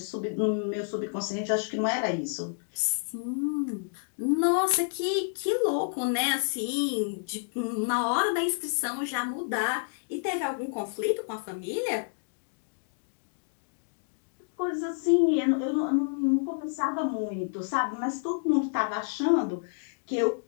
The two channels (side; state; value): right; silent; digital silence